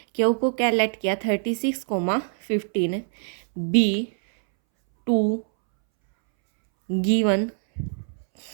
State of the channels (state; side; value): silent; left; 63 dB below the other